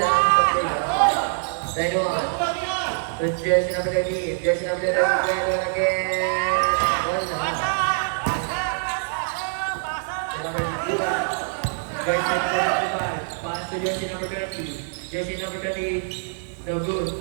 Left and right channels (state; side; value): silent; left; digital silence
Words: lang. Simple lang. Line 1. So jersey number 13. Jersey number 13. Line 1 again. Wala. Number 2. Jersey number 25. Pass to jersey number 20. Jersey number 20. No good.